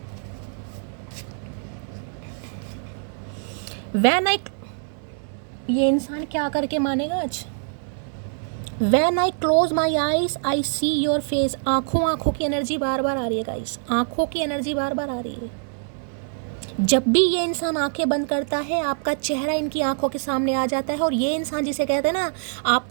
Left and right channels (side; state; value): left; silent; 62 dB below the other